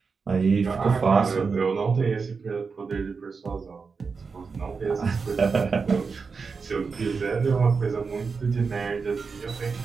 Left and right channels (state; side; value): quieter; left; 5.0 dB